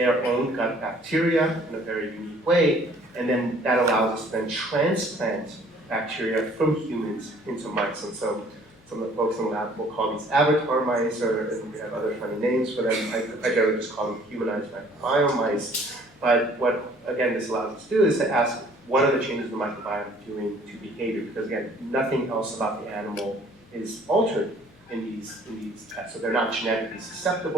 own gut bacteria in a very unique way, and then that allows us to then transplant bacteria from humans into mice. And so some of the folks in the lab will call these avatar mice, and we have other funny names for them. I generally just call them humanized microbiome mice. But what, again, this allows us to do is to ask, what are the changes in the microbiome doing to behavior? Because again, nothing else about the animal is altered in these tests. So they're not genetically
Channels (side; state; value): left; noise; hum, 29 dB below the sound